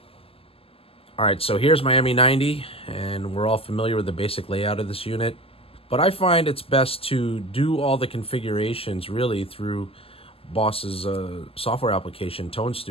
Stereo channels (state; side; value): late; right; 0.28 ms